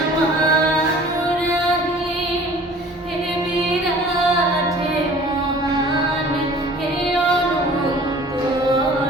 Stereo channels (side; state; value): both; normal; correlation 0.48